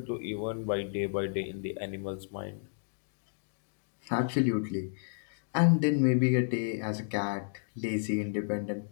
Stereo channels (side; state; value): right; silent; digital silence